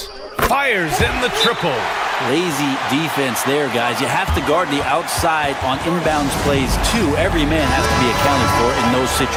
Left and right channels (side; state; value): both; identical; correlation 1.00